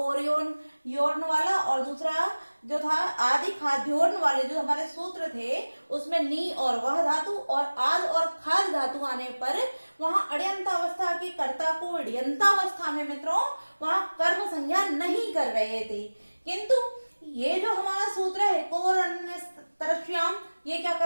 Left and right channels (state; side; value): inverted; both; correlation -1.00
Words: योर्ण वाला, और दूसरा जो था आदि खाद्योर्ण वाले जो हमारे सूत्र थे उसमें नी और वह धातु और आद और खाद धातु आने पर वहां अण्यन्तावस्था के कर्ता को अण्यन्तावस्था में मित्रों वहां कर्म संज्ञा नहीं कर रहे थे, किंतु ये जो हमारा सूत्र है कोरण्यतरश्याम, ये क्या